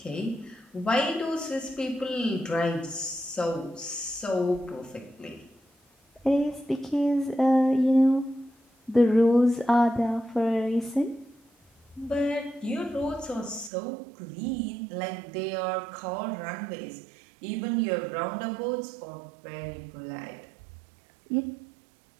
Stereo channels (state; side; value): drops out; left; at 13.7 s